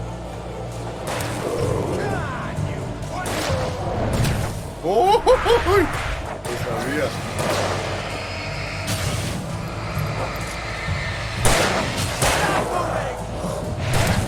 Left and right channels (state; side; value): identical; both; correlation 1.00